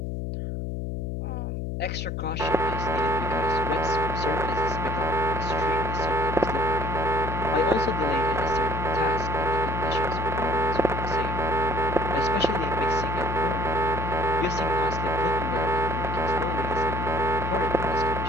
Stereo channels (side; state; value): left; noise; hum, 3 dB below the sound